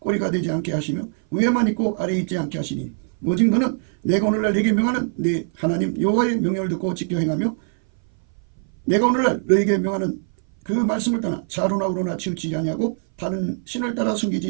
되지 않게 하시며 위에만 있고 아래에 있지 않게 하시니 오직 너는 내가 오늘날 네게 명하는 네 하나님 여호와의 명령을 듣고 지켜 행하며 내가 오늘날 너에게 명하는 그 말씀을 떠나 좌로나 우로나 치우치지 아니하고 다른 신을 따라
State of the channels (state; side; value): silent; left; 60 dB below the other